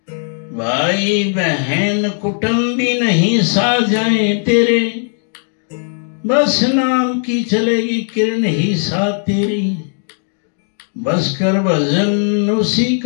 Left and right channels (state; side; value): silent; right; 57 dB below the other